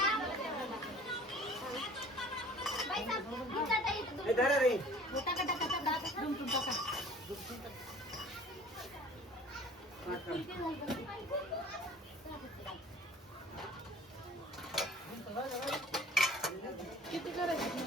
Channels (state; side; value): normal; both; correlation 0.47